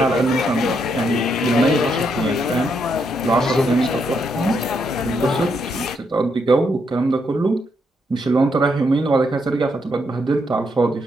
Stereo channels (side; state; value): both; normal; correlation 0.77